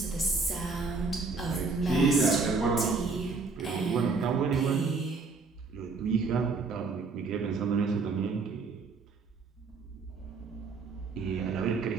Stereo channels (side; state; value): left; quieter; 4.2 dB